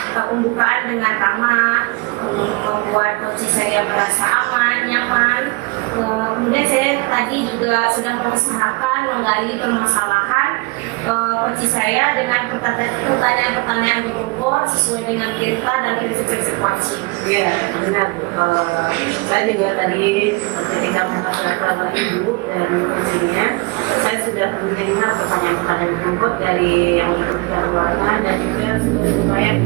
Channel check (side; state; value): left; quieter; 26.0 dB